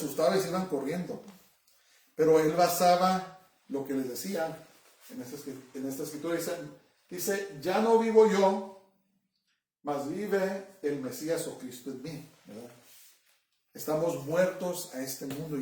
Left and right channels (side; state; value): both; identical; correlation 1.00